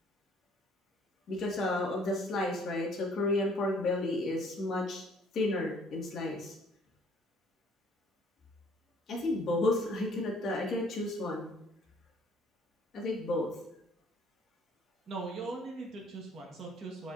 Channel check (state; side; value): normal; both; correlation 0.59